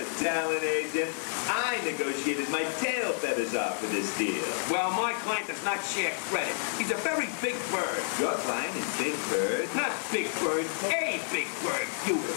talent agent? I negotiated my tail feathers off for this deal. Well, my client does not share credit. He's a very big bird. Your client is Big Bird? Not Big Bird, a Big Bird, you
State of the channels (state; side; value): silent; right; 58 dB below the other